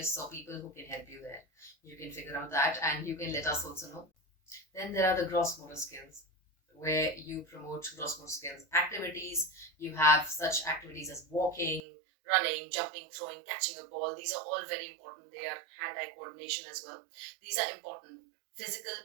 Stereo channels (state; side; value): drops out; left; at 11.8 s